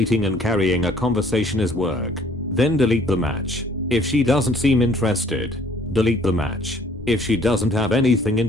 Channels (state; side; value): normal; both; correlation 0.58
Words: and carrying a conversation as work, then delete the match. If she doesn't seem interested, delete the match. If she doesn't have anything